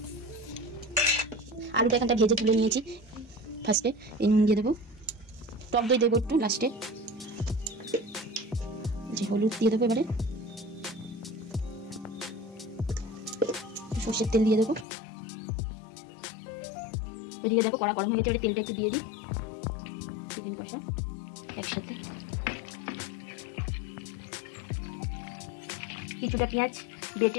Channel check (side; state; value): right; drops out; at 14.9 s